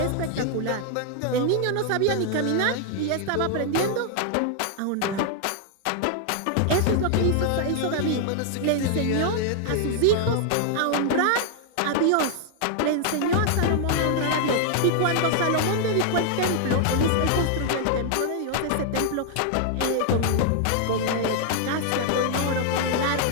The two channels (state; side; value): different; both; correlation 0.00